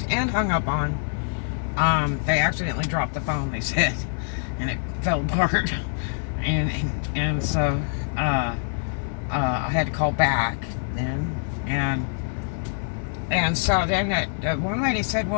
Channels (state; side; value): silent; right; 62 dB below the other